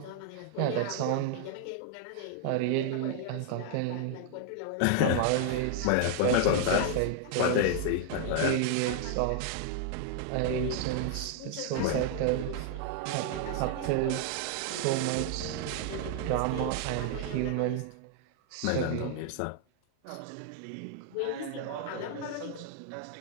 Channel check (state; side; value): different; both; correlation 0.00